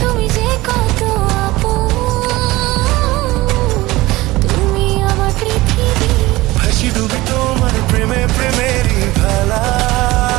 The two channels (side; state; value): left; quieter; 19.2 dB